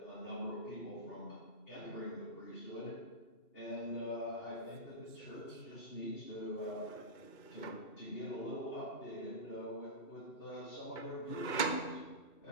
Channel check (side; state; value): right; late; 2.7 ms